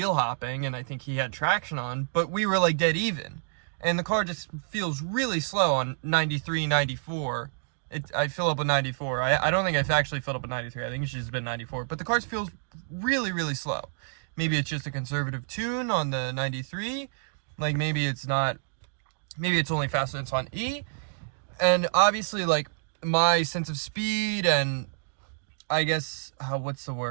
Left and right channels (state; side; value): silent; left; digital silence